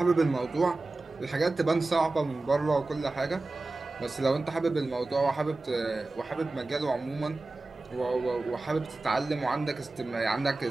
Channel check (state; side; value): quieter; left; 3.2 dB